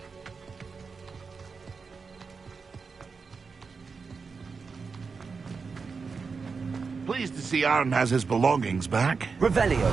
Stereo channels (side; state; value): left; quieter; 5.0 dB